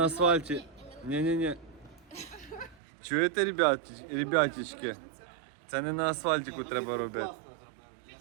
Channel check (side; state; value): left; drops out; at 2.8 s